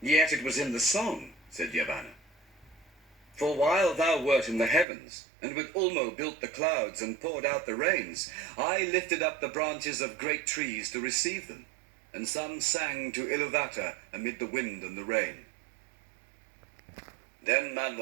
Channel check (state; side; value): drops out; left; at 4.9 s